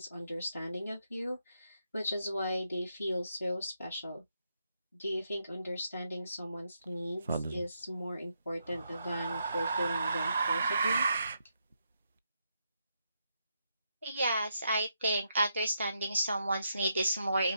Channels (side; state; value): both; inverted; correlation -0.80